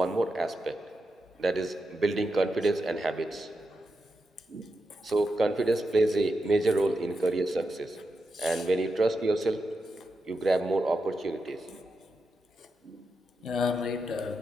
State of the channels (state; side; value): normal; both; correlation 0.87